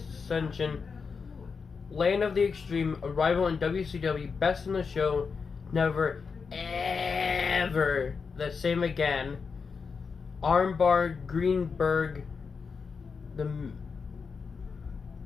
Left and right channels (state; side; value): quieter; right; 5.4 dB